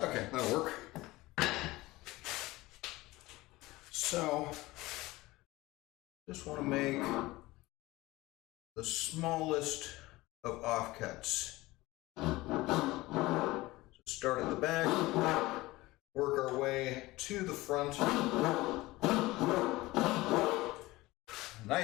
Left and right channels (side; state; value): right; quieter; 19.6 dB